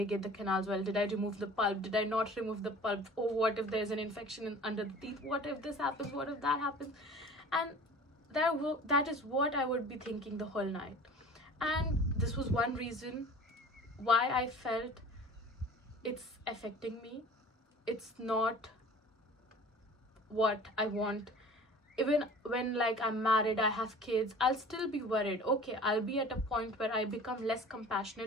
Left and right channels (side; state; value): both; normal; correlation 0.43